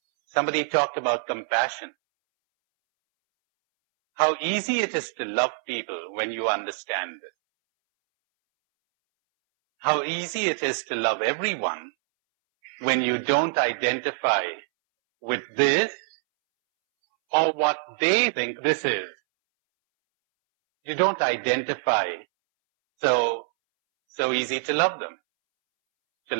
Somebody talked about compassion. How easy it is to love people when you understand it. How easy it is to love everyone when you don't identify with this or what they think this is. You don't identify. So easy to love them, to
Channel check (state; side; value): silent; left; 62 dB below the other